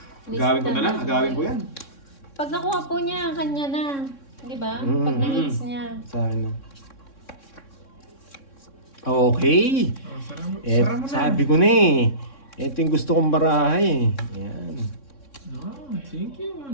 Agawin ko na lang. Agawin ko yan. Pag nakuha po niya, kanya na. Di ba? Pag na-hits niya. Sa akin na. Okay. Oh, sara mo na. Sabi ko na eh. Ito yung gusto kong barahay. Yan. No, thank you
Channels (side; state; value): right; late; 3.6 ms